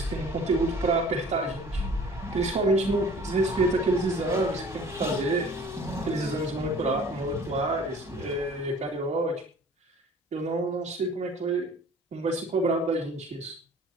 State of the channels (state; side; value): normal; both; correlation 0.48